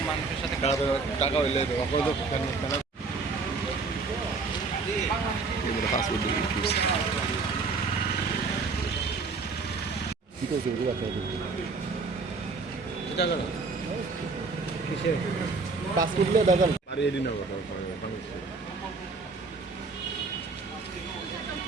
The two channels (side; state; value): left; quieter; 4.2 dB